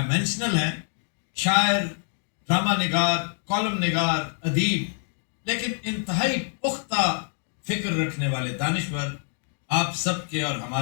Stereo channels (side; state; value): right; silent; 60 dB below the other